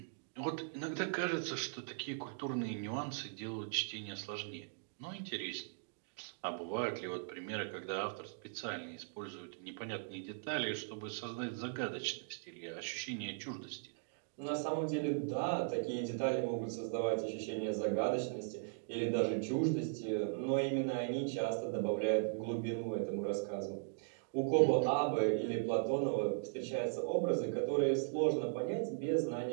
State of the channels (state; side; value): silent; left; digital silence